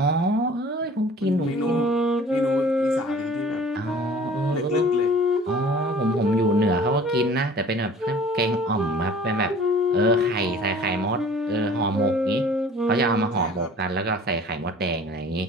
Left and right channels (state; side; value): normal; both; correlation 0.48